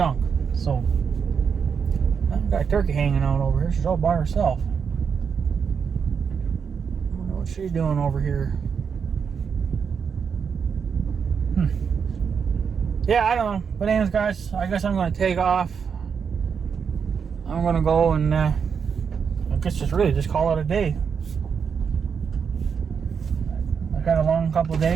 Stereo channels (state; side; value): quieter; left; 6.5 dB